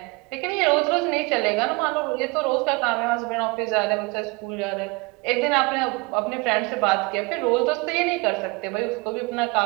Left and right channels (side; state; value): left; quieter; 26.4 dB